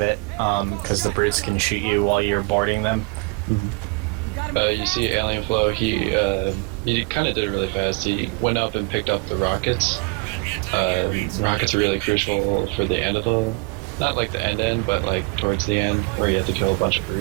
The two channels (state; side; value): quieter; left; 29.2 dB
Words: because the brutes can shoot you while you're boarding them. You see Alien Flow, he kind of did it really fast. He went up and picked up the rockets. Rockets are really crucial for the end of the... Not like the end, but like towards the end, where you have to kill a bunch of